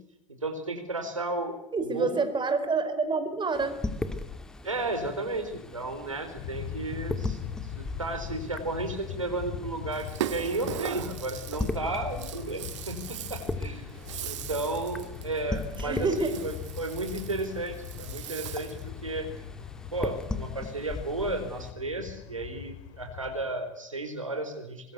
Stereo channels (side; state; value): both; normal; correlation 0.21